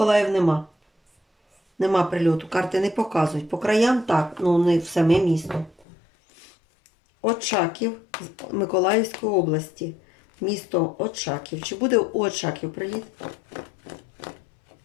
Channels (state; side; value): drops out; right; at 5.9 s